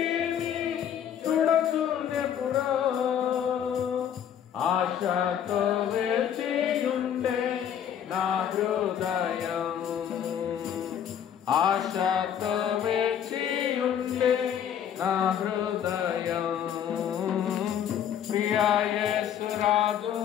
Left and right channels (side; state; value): right; quieter; 9.2 dB